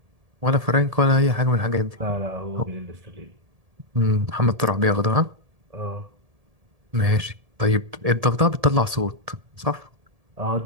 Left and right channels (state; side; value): late; left; 1.7 ms